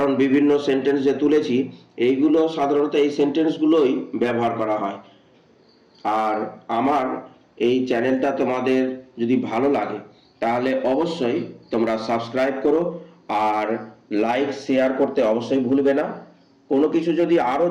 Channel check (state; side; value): identical; both; correlation 1.00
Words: বিভিন্ন সেন্টেন্স যে তুলেছি এইগুলো সাধারণত এই সেন্টেন্সগুলোই ব্যবহার করা হয়। আর আমার এই চ্যানেলটা তোমাদের যদি ভালো লাগে তাহলে অবশ্যই তোমরা সাবস্ক্রাইব করো আর লাইক শেয়ার করতে অবশ্যই ভুলবে না। কোনো কিছু যদি আরও